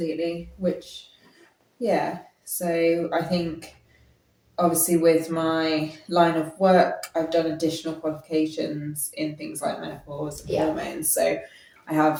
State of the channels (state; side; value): identical; both; correlation 1.00